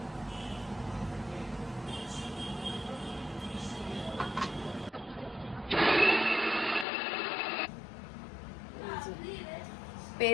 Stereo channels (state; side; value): drops out; right; at 6.9 s